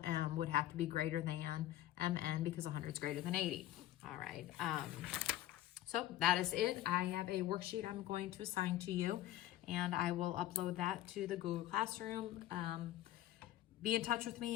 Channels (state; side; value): quieter; right; 14.0 dB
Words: would have to be greater than MN because 100 is greater than 80. All right. So that is it. I have a worksheet I'm going to assign to you, and I will upload that to the Google Classroom. Be in touch with